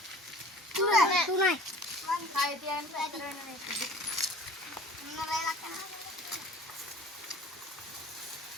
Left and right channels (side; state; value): both; normal; correlation 0.46